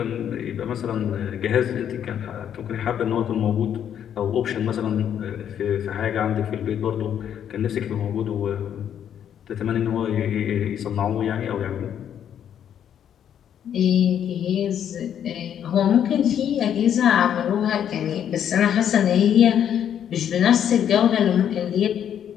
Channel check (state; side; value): quieter; right; 9.4 dB